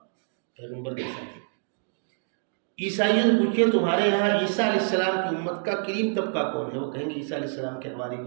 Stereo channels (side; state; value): left; silent; digital silence